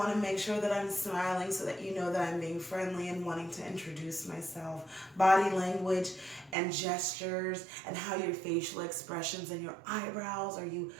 to make sure that I'm smiling so that you know that I'm being friendly and wanting to introduce myself. Body language and gestures and how your facial expressions and your eyebrows, are your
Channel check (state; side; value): drops out; left; at 6.6 s